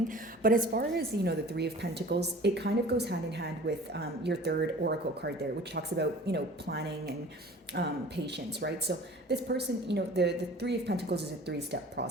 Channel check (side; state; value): both; normal; correlation 0.44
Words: But as far as, the Three of Pentacles, it kind of goes hand in hand with your third oracle card there, which talks about, planning and patience, right? So this person, the Three of Pentacles is a 3-step